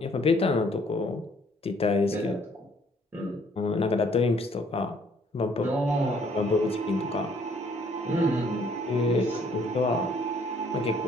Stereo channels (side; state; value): both; normal; correlation 0.62